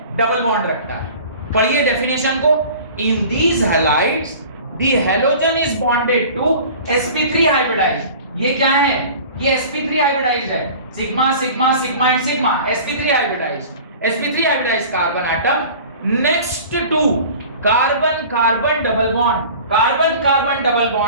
डबल बॉन्ड रखता है। पढ़िए डेफिनेशन को, in these halides the halogen is bonded to sp3 hybridized. ये क्या है, ये sp3 हाइब्रिडाइज्ड है, sigma sigma sigma and sigma, sp3 hybridized carbon atom next to carbon carbon double bond, carbon carbon double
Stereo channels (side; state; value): both; inverted; correlation -0.42